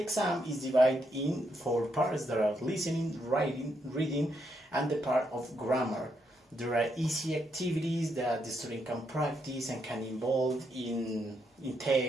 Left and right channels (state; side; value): normal; both; correlation 0.79